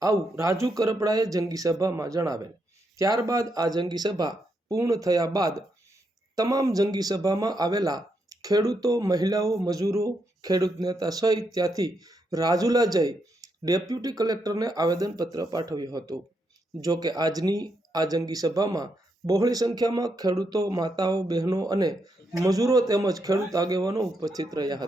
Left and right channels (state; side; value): normal; both; correlation 0.80